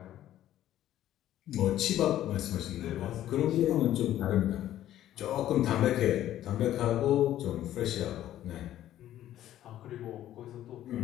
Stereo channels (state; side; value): quieter; right; 12.7 dB